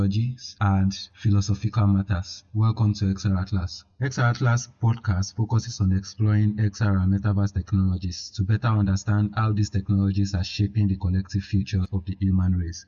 and philosophical matters. Welcome to XRAtlas. XRAtlas podcast focuses on exploring XR and metaverse technologies to better understand how these technologies are shaping the collective future of the human race.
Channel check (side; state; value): both; identical; correlation 1.00